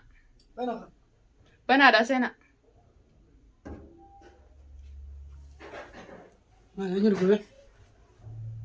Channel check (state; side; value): identical; both; correlation 1.00